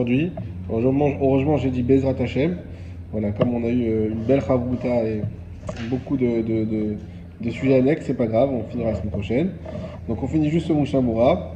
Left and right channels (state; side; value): identical; both; correlation 1.00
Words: Heureusement, j'ai dit Bezrat Hashem. Voilà, comme on a eu une belle Chavruta et beaucoup de sujets annexes, c'est pas grave, on finira la semaine prochaine. Donc on finit juste ce Mishabura.